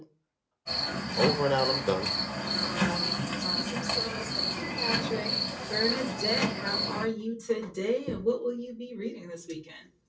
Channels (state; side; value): identical; both; correlation 1.00